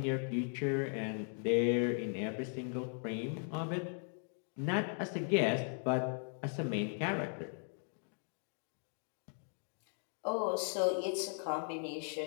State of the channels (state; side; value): silent; right; 52 dB below the other